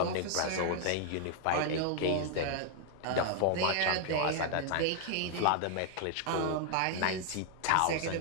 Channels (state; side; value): different; both; correlation 0.00